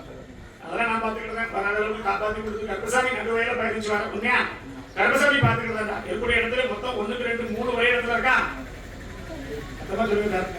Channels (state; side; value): identical; both; correlation 1.00